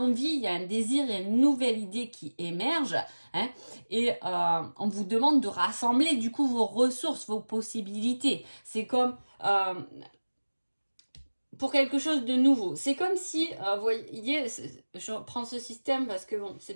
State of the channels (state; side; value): inverted; both; correlation -1.00